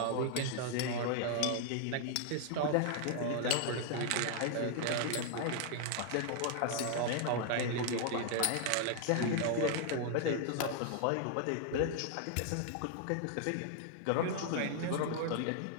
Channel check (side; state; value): both; different; correlation 0.00